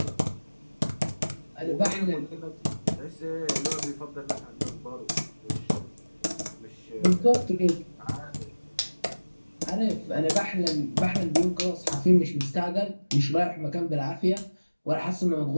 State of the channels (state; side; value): inverted; both; correlation -1.00